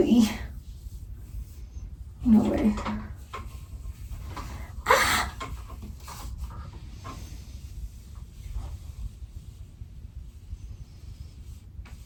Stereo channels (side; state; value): both; identical; correlation 1.00